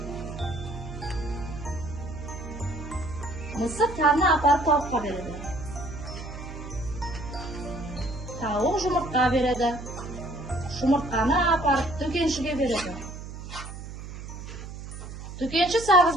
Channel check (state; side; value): noise; right; hum, 10 dB below the sound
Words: Мысық тағына апарып тауыққа береді. Тауық жұмыртқа береді. Жұмыртқаны апарып дүкеншіге береді. Дүкенші сағыз